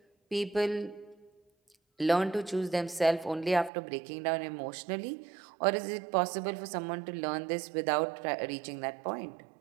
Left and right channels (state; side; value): drops out; left; at 3.7 s